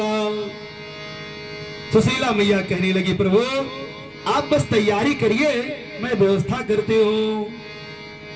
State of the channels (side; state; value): both; identical; correlation 1.00